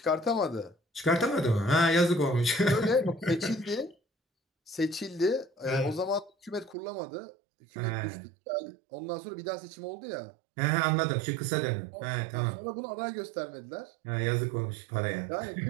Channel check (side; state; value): left; drops out; at 6.8 s